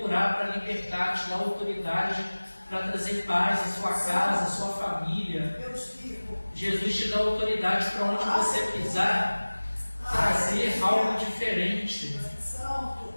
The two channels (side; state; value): both; inverted; correlation -1.00